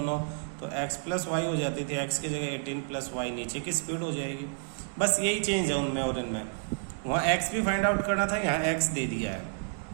तो एक्स प्लस वाई हो जाती थी, एक्स की जगह 18 प्लस वाई नीचे की स्पीड हो जाएगी। बस यही चेंज है उनमें और इनमें। वहाँ एक्स भी फाइंड आउट करना था, यहाँ एक्स दे दिया है।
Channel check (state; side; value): silent; left; digital silence